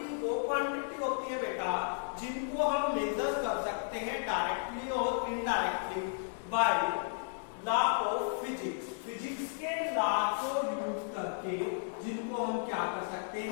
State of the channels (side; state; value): right; silent; digital silence